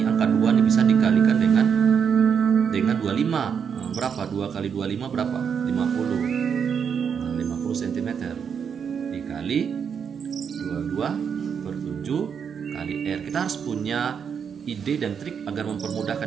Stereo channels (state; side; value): quieter; left; 7.1 dB